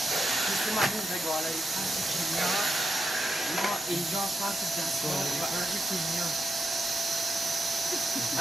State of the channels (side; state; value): both; normal; correlation 0.86